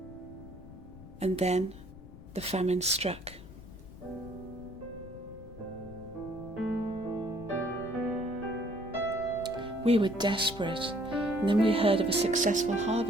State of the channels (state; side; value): noise; left; rumble, 16 dB below the sound